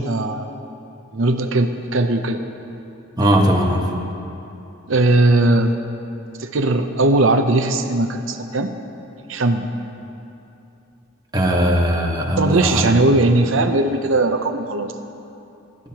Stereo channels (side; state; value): both; normal; correlation 0.44